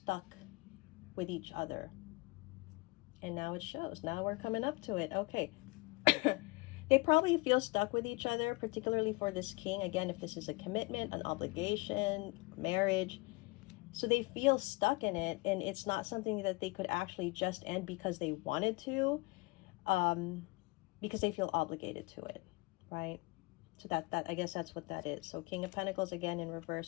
with each other. And now it shows. Now we're coming up to it. Okay. They probably feel stuck with each other, particularly for this king. Again, if this is a commitment, an obligation, marriage. So they feel stuck in it, and it's not something that they could actually just end because they wanted to, because they feel obligated to it, right? So that I guess that's what that is. So King of Pentacles, again, in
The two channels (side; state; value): right; quieter; 25.5 dB